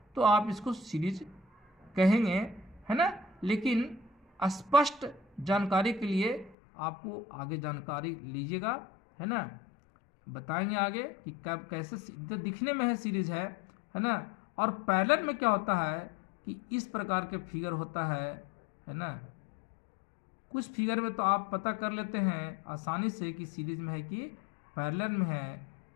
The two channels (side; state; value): right; drops out; at 6.6 s